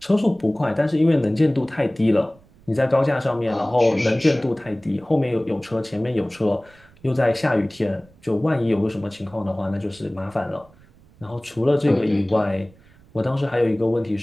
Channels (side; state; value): right; noise; rumble, 28 dB below the sound